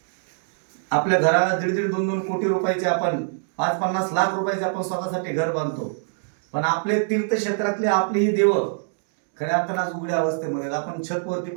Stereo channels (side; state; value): left; silent; digital silence